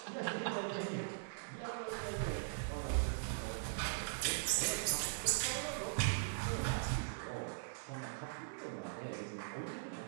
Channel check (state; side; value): silent; left; digital silence